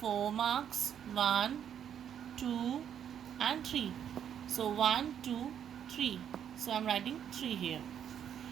marks? 1, 2 and 3. So 1, 2, 3. So I am writing 3 here.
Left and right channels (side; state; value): left; quieter; 9.0 dB